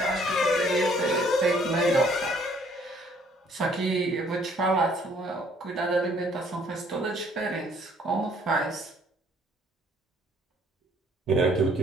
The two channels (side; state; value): both; normal; correlation 0.61